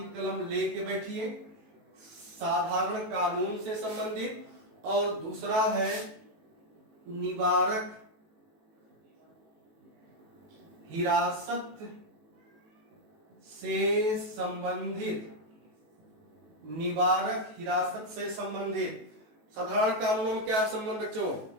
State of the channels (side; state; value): left; late; 18 ms